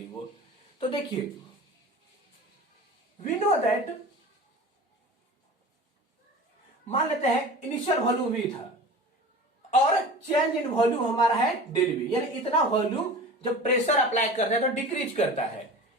वो। तो देखिए वी नो दैट, मान लेते हैं इनिशियल वॉल्यूम V था और चेंज इन वॉल्यूम हमारा है डेल V, यानी इतना वॉल्यूम जब प्रेशर अप्लाई करते हैं तो डिक्रीज करता है।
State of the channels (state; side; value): normal; both; correlation 0.37